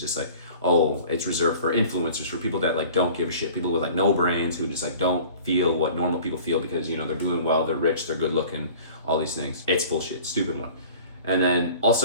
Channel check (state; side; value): inverted; both; correlation -0.45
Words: like, oh, it's reserved for influencers, for people that like don't give a shit, people with like no brains who just like don't feel what normal people feel because they're doing well, they're rich, they're good looking, all these things. It's bullshit, stupid one. And then